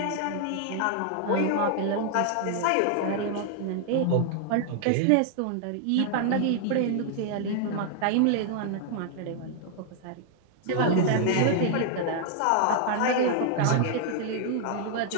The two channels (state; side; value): different; both; correlation 0.00